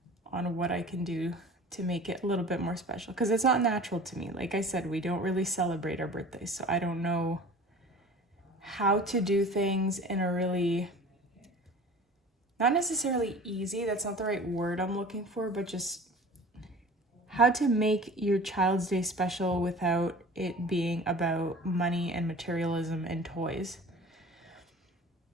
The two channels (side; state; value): both; normal; correlation 0.42